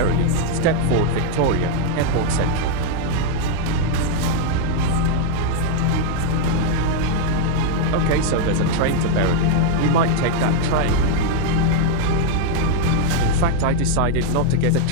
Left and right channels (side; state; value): both; different; correlation 0.00